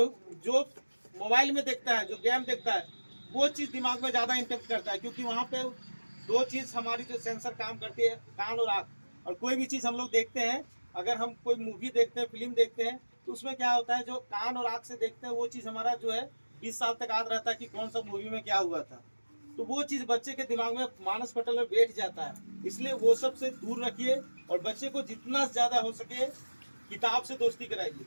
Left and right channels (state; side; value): inverted; both; correlation -1.00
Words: जो मोबाइल में देखता है, जो गेम देखता है, वो चीज़ दिमाग में ज़्यादा इम्पेक्ट करता है। क्योंकि वहाँ पे दो चीज़ हमारी जो सेंसर काम करती है, कान और आँख। और कोई भी चीज़ हम लोग देखते हैं, अगर हम कोई मूवी देखते हैं, फिल्म देखते हैं, तो उसमें क्या होता है, जो कान और आँख से देखते हैं वो चीज़ हमारा जो है 20 साल तक याद रहता है कि कौन सा मूवी में क्या हुआ था। तो वो चीज़ बच्चे के दिमाग में मानस पटल में बैठ जाता है। इसलिए वो सब से दूर रखिए और बच्चे को जितना ज़्यादा हो सके किताब से दोस्ती कराइए।